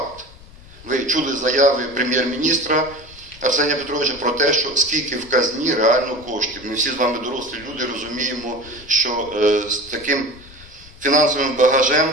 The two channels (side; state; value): left; noise; rumble, 21 dB below the sound